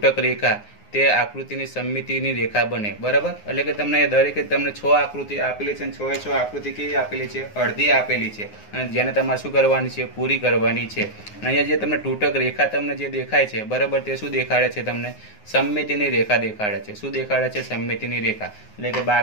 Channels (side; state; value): right; late; 9.6 ms